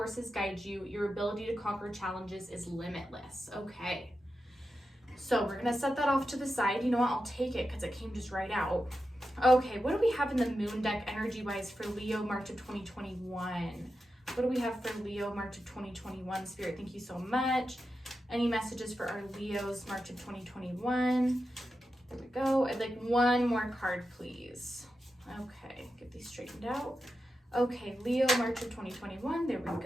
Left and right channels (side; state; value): both; normal; correlation 0.90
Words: guide you. Your ability to conquer challenges is limitless. Okay. So we're going to set that off to the side. You know what? I'll take it because it came just right out. Okay. What do we have in the moon deck energy-wise for Leo, March of 2021? What do we have for Leo, March of 2021? Spirit, thank you so much. Any messages for our Leos, March of 2021? There we go. I'd like one more card, please. Okay, get these straightened out. Okay, Leo, March of 2021. There we